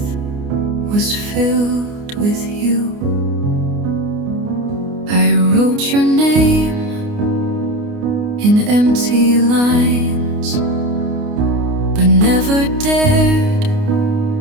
was filled with you. I wrote your name in empty lines, but never dared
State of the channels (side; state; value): left; late; 29 ms